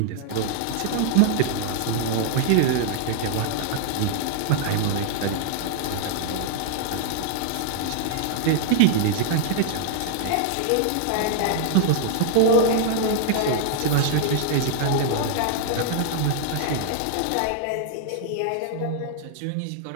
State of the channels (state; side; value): different; both; correlation -0.01